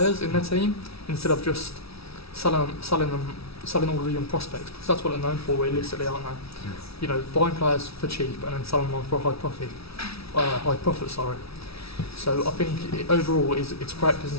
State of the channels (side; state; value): right; late; 0.76 ms